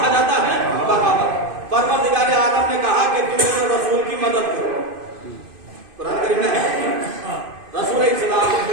جاتا ہے؟ بغاوت. پروردگار عالم نے کہا کہ تم میرے رسول کی مدد کرو. قرآن کریم میں ہے رسول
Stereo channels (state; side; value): late; left; 2.5 ms